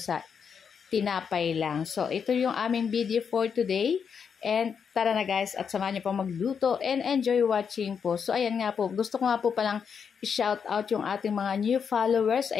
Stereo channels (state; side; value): quieter; right; 6.7 dB